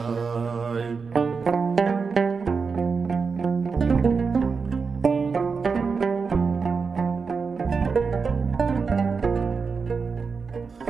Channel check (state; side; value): quieter; left; 5.1 dB